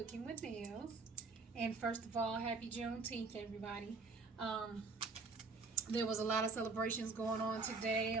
with Nails. And first of all, happy Juneteenth, everybody. Um, there was a lot of celebrations going on today,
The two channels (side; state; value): left; quieter; 4.1 dB